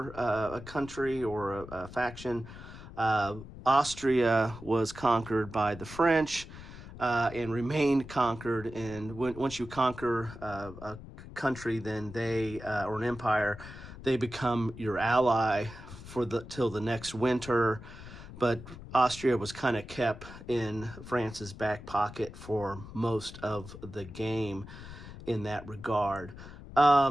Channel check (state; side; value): noise; left; rumble, 14 dB below the sound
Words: a country or a faction. Austria was conquered by the French and remained conquered. And once you conquer a country, then they or an empire, they become your ally till the next winter. But Austria was kind of kept in France's back pocket for most of the game in that regard.